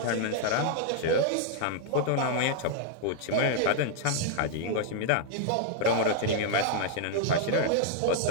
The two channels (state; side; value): different; both; correlation 0.00